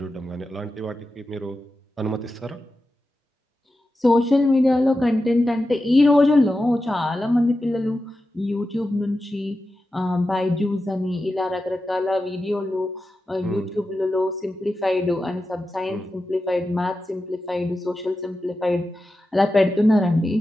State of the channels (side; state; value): both; normal; correlation 0.91